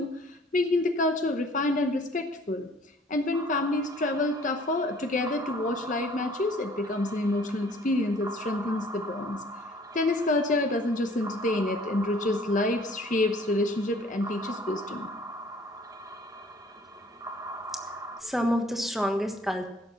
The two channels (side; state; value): both; normal; correlation 0.55